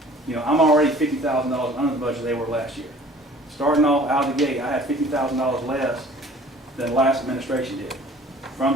I'm already $50,000 under the budget they were last year. Starting off out of the gate, I had $50,000 less than the last administration did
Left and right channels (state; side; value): normal; both; correlation 0.50